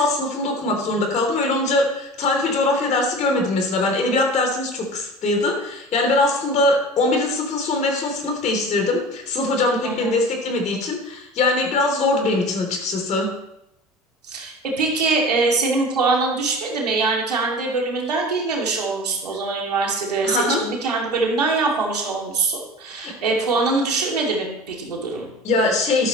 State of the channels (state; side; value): normal; both; correlation 0.36